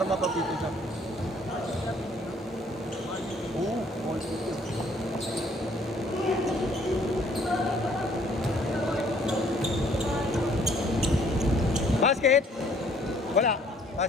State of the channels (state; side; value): normal; both; correlation 0.61